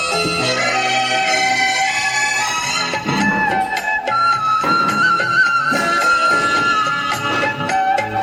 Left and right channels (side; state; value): both; identical; correlation 1.00